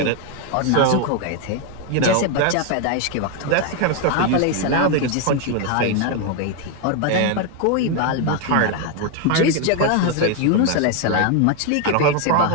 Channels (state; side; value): different; both; correlation 0.01